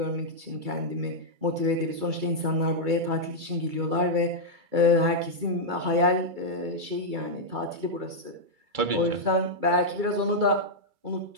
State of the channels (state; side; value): late; left; 2.3 ms